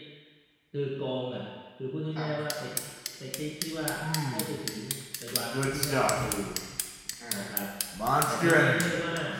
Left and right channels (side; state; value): both; identical; correlation 1.00